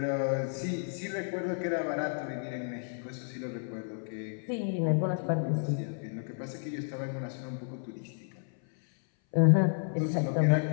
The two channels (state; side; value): silent; right; 57 dB below the other